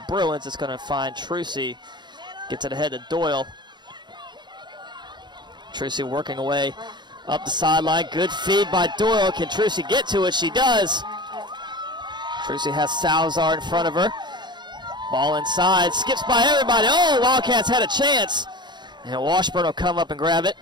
Bruins. It's going to find Trucy. Gets it ahead to Doyle. Trucy working away up the sideline. Good feed by Doyle. Can Trucy get to it? She does. Trucy has Salazar in front of her. Ball inside. Skips by everybody. Oh, Wildcats had a chance. And Washburn will come up and grab it.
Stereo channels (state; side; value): late; left; 0.21 ms